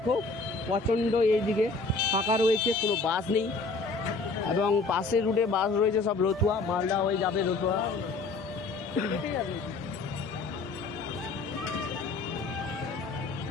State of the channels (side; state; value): right; quieter; 3.9 dB